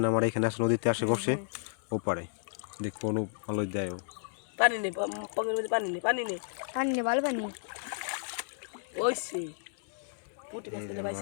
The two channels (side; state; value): right; silent; digital silence